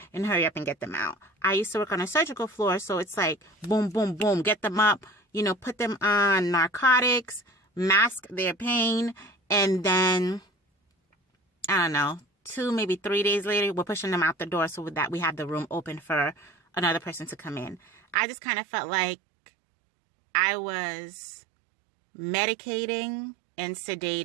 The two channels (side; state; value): left; drops out; at 18.2 s